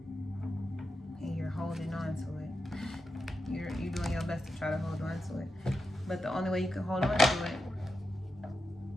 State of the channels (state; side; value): normal; both; correlation 0.88